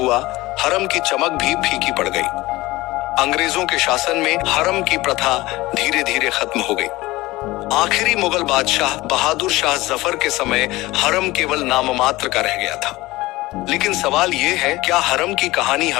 हरम की चमक भी फीकी पड़ गई। अंग्रेजों के शासन में हरम की प्रथा धीरे धीरे खत्म हो गई। आखिरी मुगल बादशाह बहादुर शाह जफर के समय हरम केवल नाममात्र का रह गया था। लेकिन सवाल यह है, क्या हरम की कहानी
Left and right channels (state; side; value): quieter; right; 19.4 dB